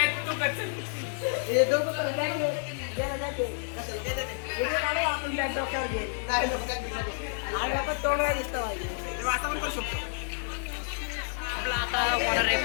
आपला आता होणार आहे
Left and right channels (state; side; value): silent; right; digital silence